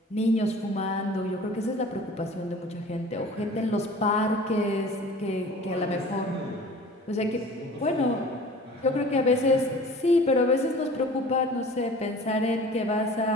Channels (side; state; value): both; normal; correlation 0.44